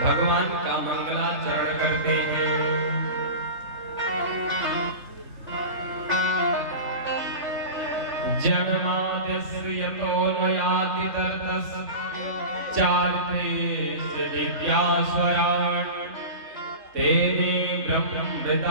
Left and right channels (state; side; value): late; left; 3.5 ms